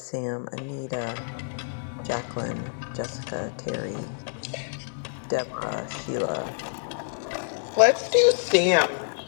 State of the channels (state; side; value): silent; right; 60 dB below the other